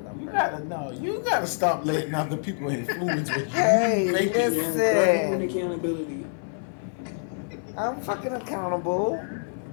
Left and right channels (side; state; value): right; silent; 57 dB below the other